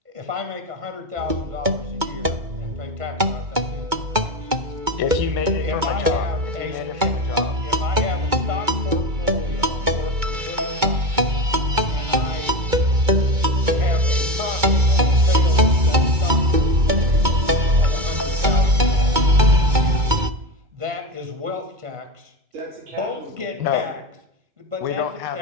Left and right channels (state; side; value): late; left; 2.2 ms